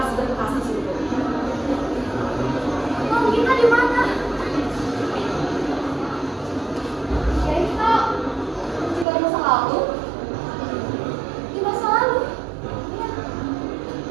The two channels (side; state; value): left; drops out; at 9.1 s